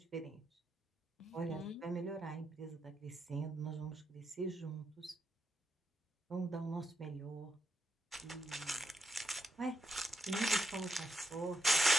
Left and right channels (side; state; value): both; normal; correlation 0.81